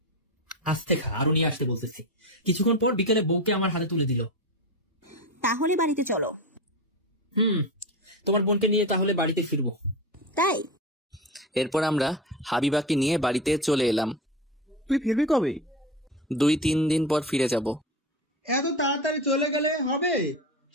আস্তে খা, আরো নিয়ে আসতে বলতেছি। কিছুক্ষণ পর বিকেলে বউকে আমার হাতে তুলে দিল। তাহলে বাড়িতে চলো। তোমার বোনকে নিয়ে তাহলে বাড়িতে ফিরবো। তাই? এরপর আমরা হাবিবাকে নিয়ে বাড়িতে চলে এলাম। তুই ফিরবি কবে? 2-3 দিন পর ফিরে যাব। এত তাড়াতাড়ি চলে গেলে হবে?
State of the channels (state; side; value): normal; both; correlation 0.23